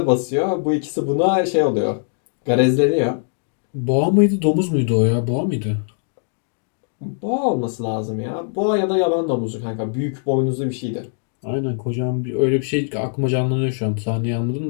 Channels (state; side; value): silent; right; digital silence